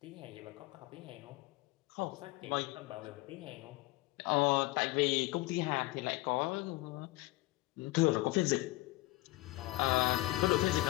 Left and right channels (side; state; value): right; quieter; 19.5 dB